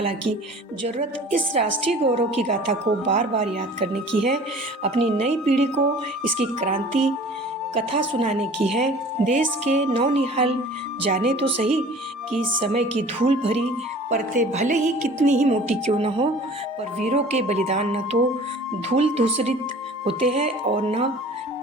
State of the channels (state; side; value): normal; both; correlation 0.45